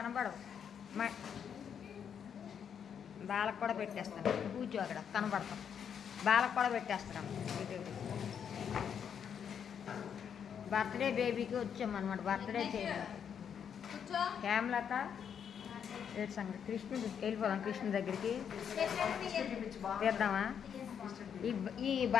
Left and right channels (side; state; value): right; quieter; 7.9 dB